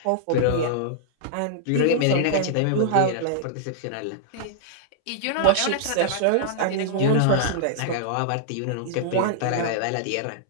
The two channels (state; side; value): different; both; correlation -0.01